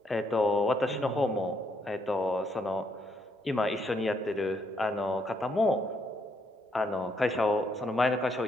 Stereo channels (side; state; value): both; normal; correlation 0.74